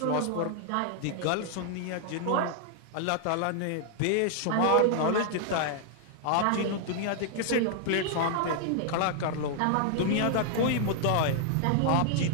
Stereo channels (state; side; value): different; both; correlation 0.00